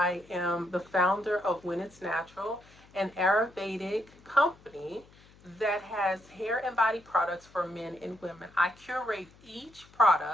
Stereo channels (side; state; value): left; noise; hum, 26 dB below the sound